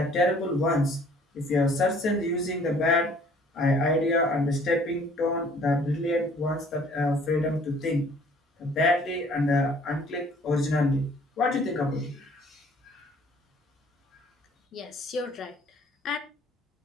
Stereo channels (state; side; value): normal; both; correlation 0.56